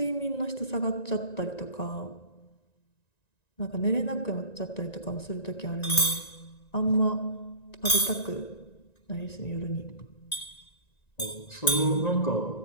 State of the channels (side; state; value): right; late; 1.9 ms